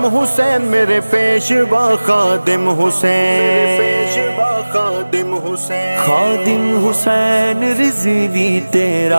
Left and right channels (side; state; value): both; inverted; correlation -1.00